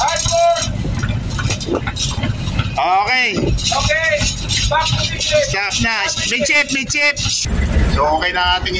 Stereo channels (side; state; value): both; identical; correlation 1.00